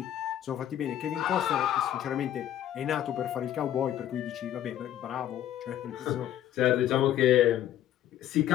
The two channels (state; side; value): quieter; right; 11.6 dB